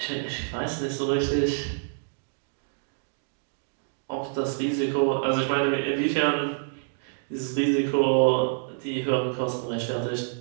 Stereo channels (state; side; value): silent; left; digital silence